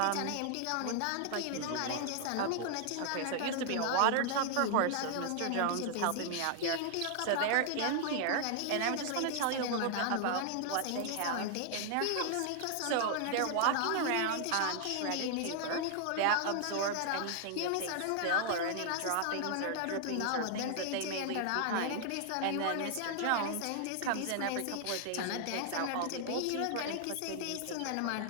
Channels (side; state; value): both; different; correlation 0.00